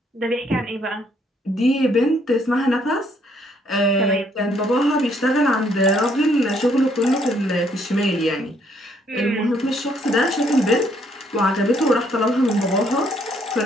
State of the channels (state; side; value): normal; both; correlation 0.68